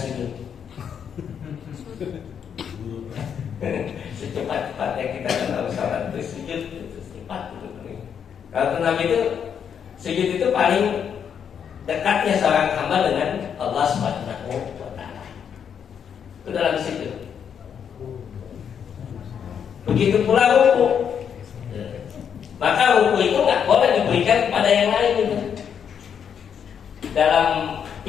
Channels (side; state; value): right; quieter; 7.8 dB